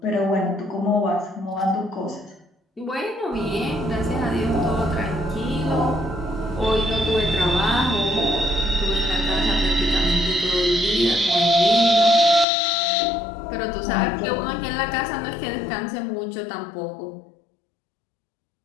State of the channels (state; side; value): drops out; right; at 12.5 s